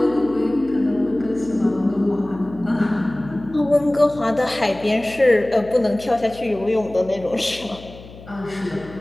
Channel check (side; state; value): left; noise; hum, 18 dB below the sound